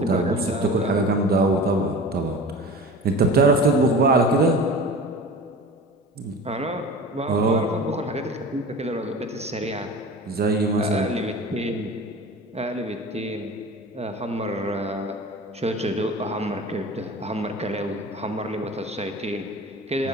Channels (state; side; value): normal; both; correlation 0.36